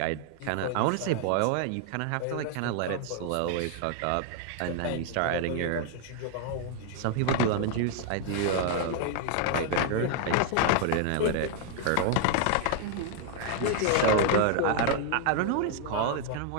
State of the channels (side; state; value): both; different; correlation 0.00